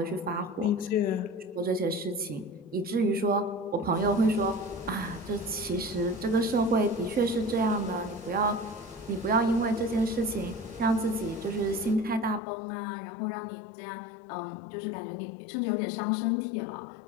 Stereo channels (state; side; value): drops out; right; at 12.4 s